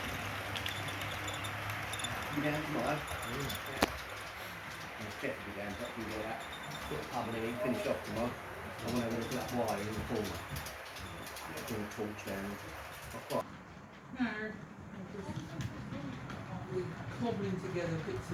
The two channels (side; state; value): both; identical; correlation 1.00